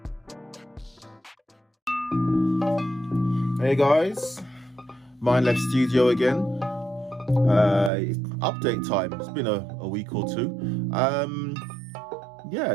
Hey guys, Mind Left Studio again. Update time. It's been a week or two.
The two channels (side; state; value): left; drops out; at 7.9 s